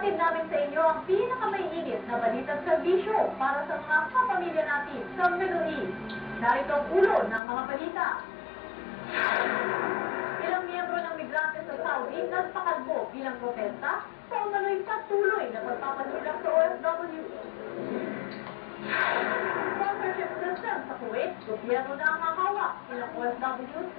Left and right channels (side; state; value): right; drops out; at 7.4 s